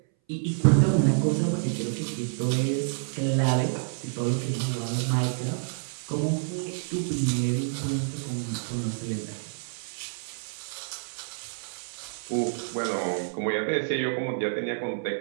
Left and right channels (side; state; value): left; silent; 59 dB below the other